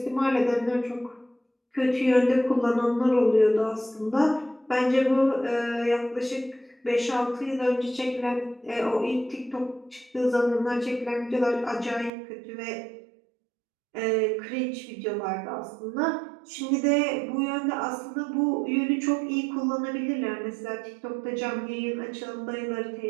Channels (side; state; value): left; drops out; at 12.1 s